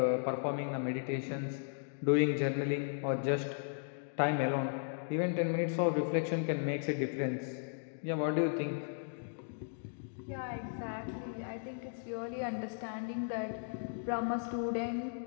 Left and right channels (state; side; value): silent; right; digital silence